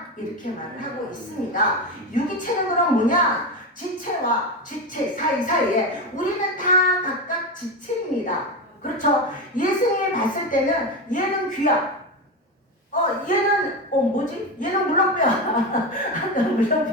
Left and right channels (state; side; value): normal; both; correlation 0.17